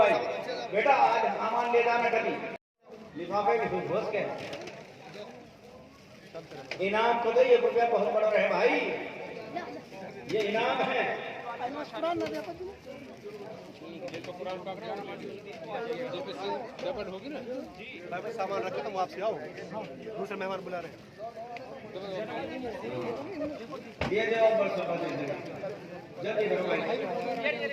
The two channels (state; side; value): identical; both; correlation 1.00